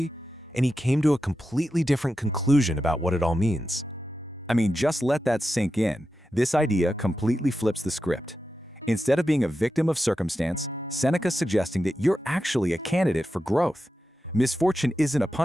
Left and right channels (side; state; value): both; normal; correlation 0.90